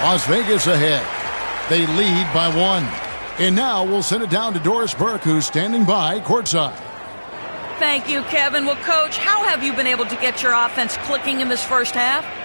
Las Vegas ahead. They lead by 1. And now we'll send it down to Doris Burke, who's standing by courtside. Thank you, Kevin. Well, Coach, how have you been able to get your offense clicking in this first half?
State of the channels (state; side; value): inverted; both; correlation -1.00